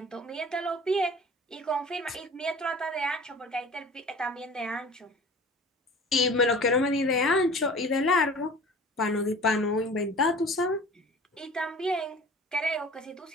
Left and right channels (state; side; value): normal; both; correlation 0.43